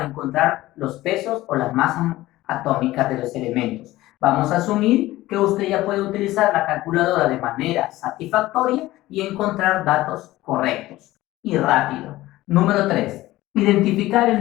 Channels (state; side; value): quieter; right; 17.0 dB